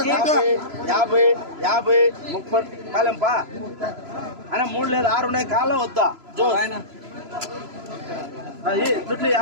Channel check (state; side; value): late; left; 3.0 ms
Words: 50, 30 కాలంపా అన్న 3 లేదు 6 ఉన్నాయి కాలం వద్దా జో దుడ్లు